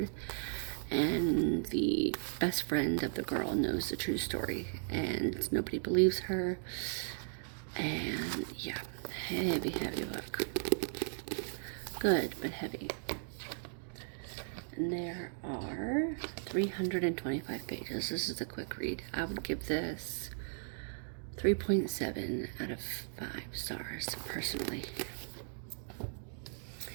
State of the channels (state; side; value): silent; left; digital silence